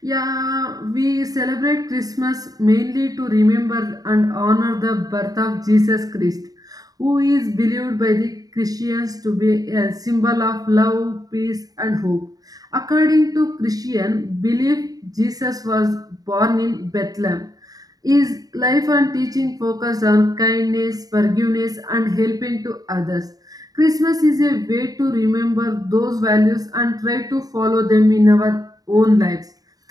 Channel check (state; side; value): late; left; 0.18 ms